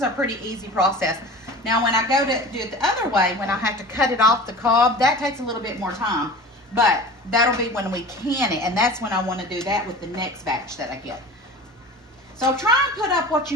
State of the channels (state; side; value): normal; both; correlation 0.37